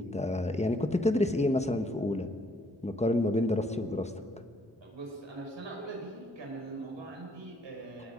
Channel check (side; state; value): both; normal; correlation 0.67